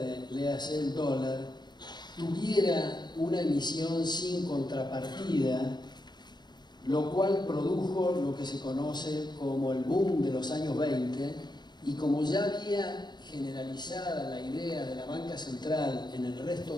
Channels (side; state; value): right; late; 0.21 ms